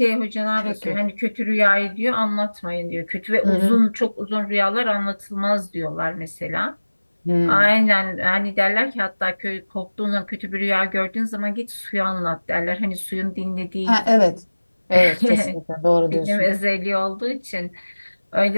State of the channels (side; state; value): both; inverted; correlation -1.00